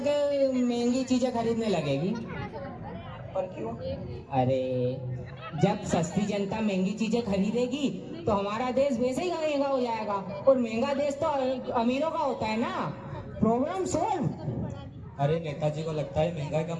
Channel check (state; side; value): identical; both; correlation 1.00